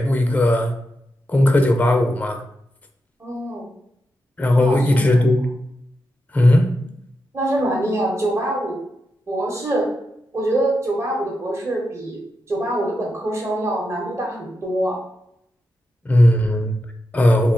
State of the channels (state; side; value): normal; both; correlation 0.87